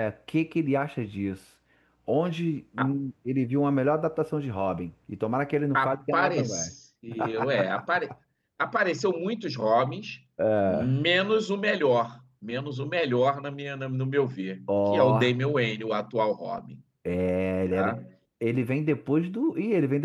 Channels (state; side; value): identical; both; correlation 1.00